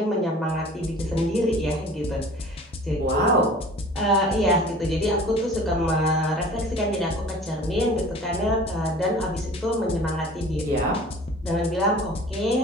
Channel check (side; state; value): both; normal; correlation 0.45